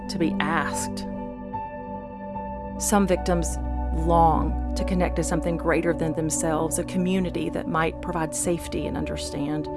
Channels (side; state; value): both; identical; correlation 1.00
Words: to be asked. Some victims long to connect to something greater than themselves, a community that might provide safety and understand.